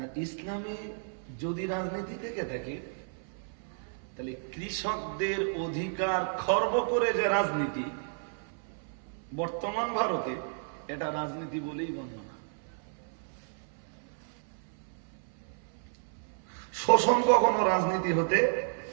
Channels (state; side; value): silent; left; 56 dB below the other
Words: ইসলামে যদি রাজনীতি থেকে থাকে তাহলে কৃষকদের অধিকার খর্ব করে যে রাজনীতি বর্তমান ভারতে, এটা রাজনীতি বলেই গণ্য না। শোষণ কখনো রাজনীতি হতে